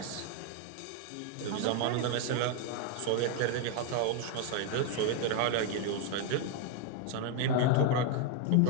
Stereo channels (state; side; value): different; both; correlation 0.00